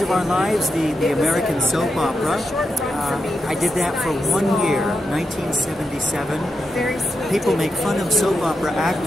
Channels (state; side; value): normal; both; correlation 0.86